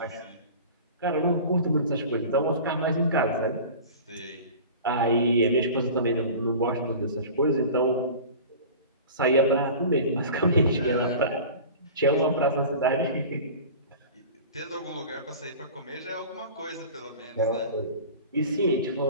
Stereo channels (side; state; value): both; inverted; correlation -0.38